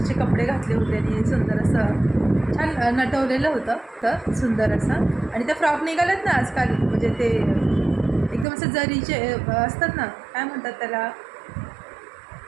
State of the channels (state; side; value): drops out; left; at 8.5 s